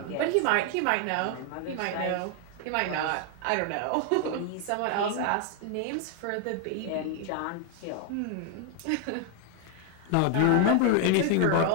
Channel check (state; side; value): different; both; correlation 0.00